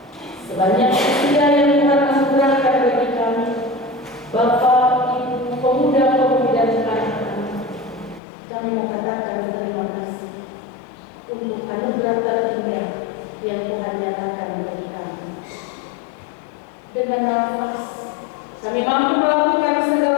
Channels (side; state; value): right; drops out; at 8.2 s